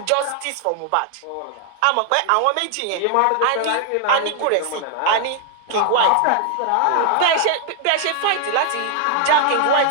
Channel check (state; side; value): different; both; correlation 0.00